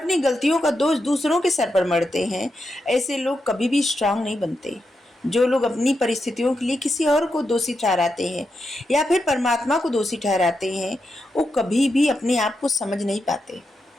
गलतियों का दोष दूसरों के सर पर मढ़ते हैं, ऐसे लोग कभी भी स्ट्रांग नहीं बनते। जो लोग अपनी परिस्थितियों के लिए किसी और को दोषी ठहराते हैं या फिर परमात्मा को दोषी ठहराते हैं, वो कभी भी अपने आप को समझ नहीं पाते,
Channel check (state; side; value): normal; both; correlation 0.86